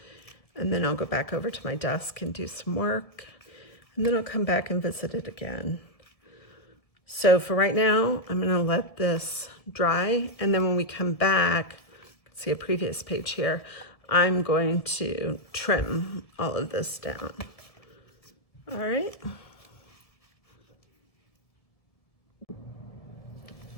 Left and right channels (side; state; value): right; late; 1.7 ms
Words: and then I'll go back over to my desk and do some work, and then I'll come back and visit it again. So for right now, I'm gonna let this dry, and then when we come back, see a previous page here, I'm going to trim all of this down. All right.